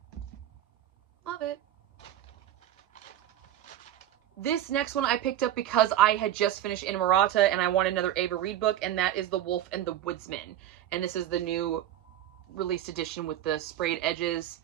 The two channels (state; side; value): quieter; left; 12.0 dB